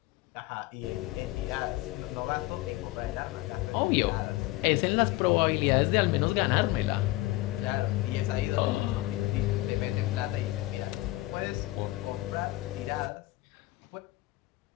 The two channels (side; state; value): right; quieter; 18.7 dB